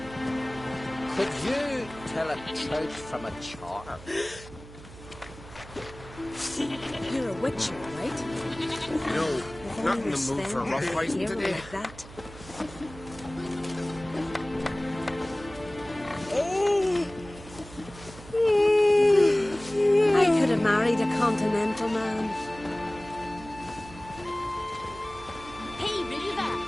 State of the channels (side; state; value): right; noise; hum, 17 dB below the sound